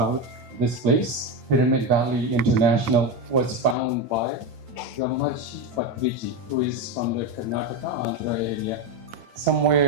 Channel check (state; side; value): late; left; 8.9 ms